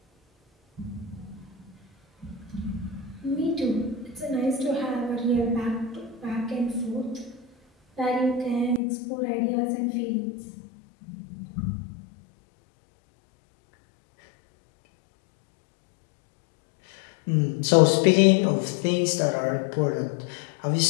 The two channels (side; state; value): right; drops out; at 8.8 s